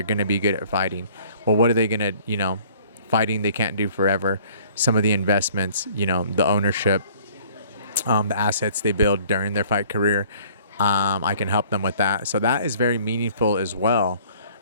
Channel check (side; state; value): both; inverted; correlation -0.55